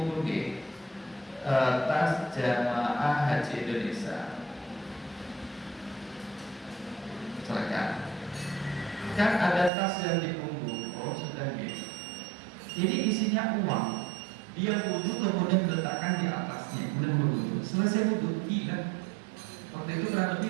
tas jamaah haji Indonesia. Silakan. Kan ada tas yang dipunggung, oh sudah gitu. Ini isinya uang. Dia wudhu kemudian diletakkan di atasnya, kemudian wudhu. Selesai wudhu, hilang. Waktu itu kurang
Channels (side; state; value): left; drops out; at 9.7 s